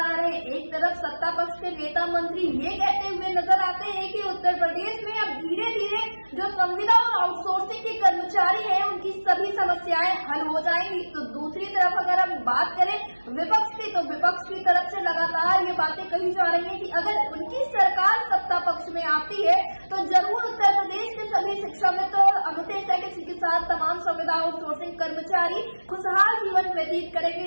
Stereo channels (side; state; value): both; inverted; correlation -1.00